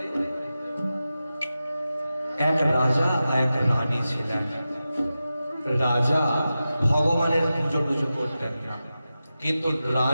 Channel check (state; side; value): inverted; both; correlation -0.93